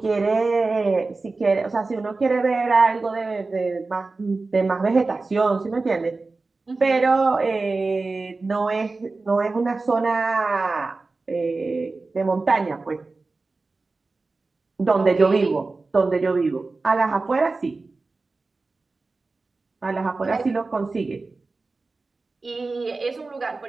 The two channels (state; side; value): quieter; left; 3.7 dB